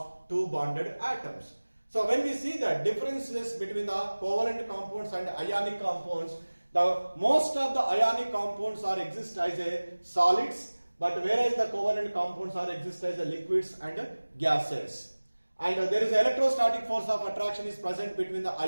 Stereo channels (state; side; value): inverted; both; correlation -1.00